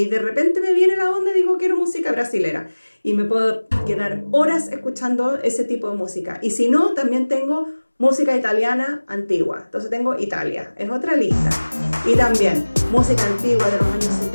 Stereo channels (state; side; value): inverted; both; correlation -1.00